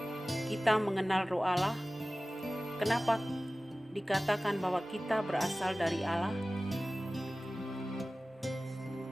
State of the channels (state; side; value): normal; both; correlation 0.97